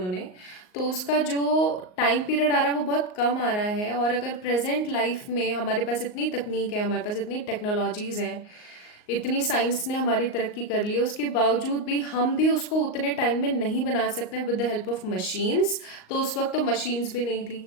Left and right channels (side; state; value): right; late; 38 ms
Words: तो उसका जो टाइम पीरियड आ रहा है वो बहुत कम आ रहा है। और अगर प्रेजेंट लाइफ में हमारे पास इतनी तकनीक है, हमारे पास इतनी टेक्नोलॉजीज़ हैं, इतनी साइंस ने हमारी तरक्की कर ली है, उसके बावजूद भी हम भी उसको उतने टाइम में नहीं बना सकते हैं with the help of machines. तो उस वक्त तो मशीन्स भी नहीं